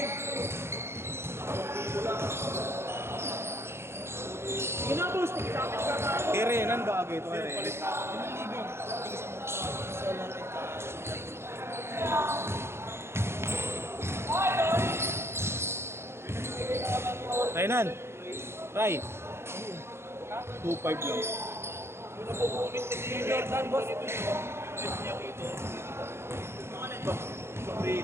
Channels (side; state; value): left; late; 0.12 ms